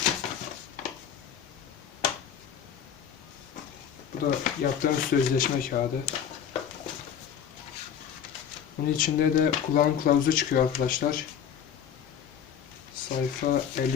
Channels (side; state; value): right; quieter; 8.5 dB